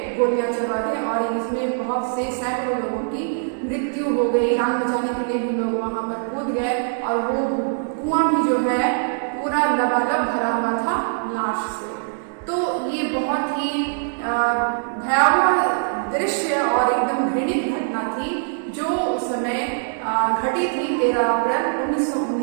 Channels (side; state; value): left; silent; digital silence